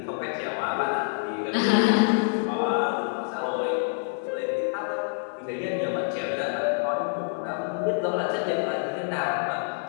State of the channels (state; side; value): silent; right; digital silence